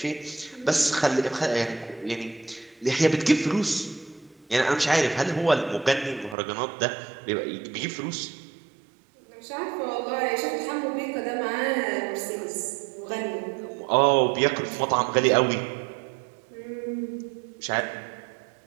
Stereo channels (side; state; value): left; drops out; at 6.4 s